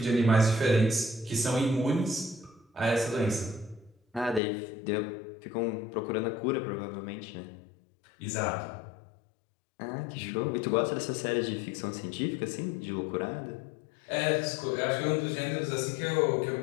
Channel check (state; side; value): drops out; right; at 4.4 s